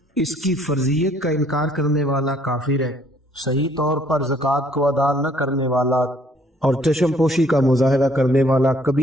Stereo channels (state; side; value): normal; both; correlation 0.62